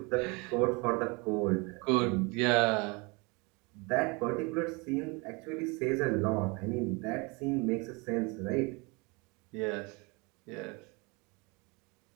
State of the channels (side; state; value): left; quieter; 28.7 dB